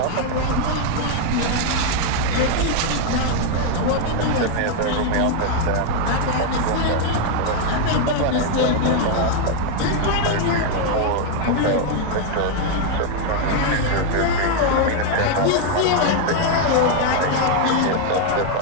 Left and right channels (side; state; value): both; different; correlation 0.01